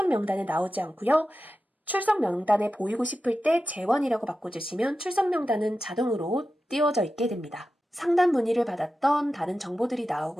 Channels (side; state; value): both; normal; correlation 0.93